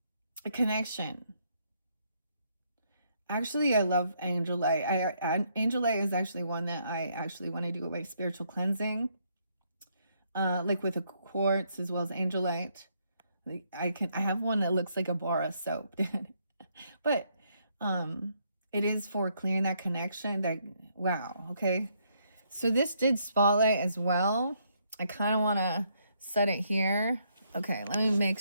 A connection. Actually, I love angel light. Angel light is actually one that I actually want to do my spiritual cleansing. Like with a quartz as well as angel light. Like I have one that looks like a bar of soap. But it is for clearing that connection. That wow, okay. So this did spotlight as well. I kind of want to set it here. Okay, let me make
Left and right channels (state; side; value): inverted; both; correlation -0.73